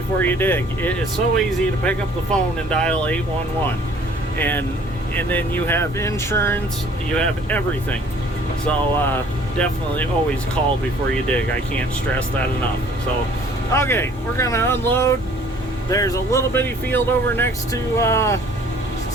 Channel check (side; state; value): both; normal; correlation 0.55